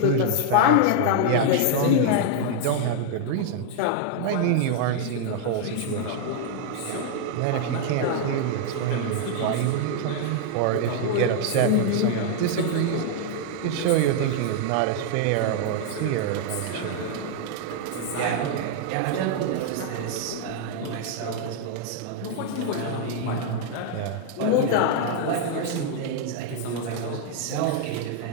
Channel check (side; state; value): both; different; correlation 0.00